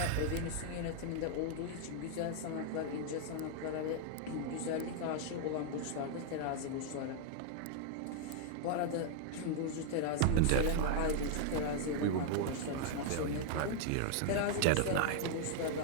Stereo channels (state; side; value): different; both; correlation 0.00